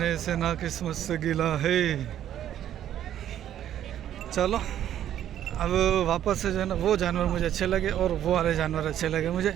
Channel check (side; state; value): left; quieter; 11.1 dB